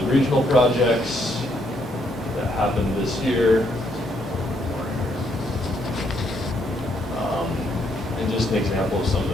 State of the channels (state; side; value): normal; both; correlation 0.73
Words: regional projects that happened this year. And just an example of some of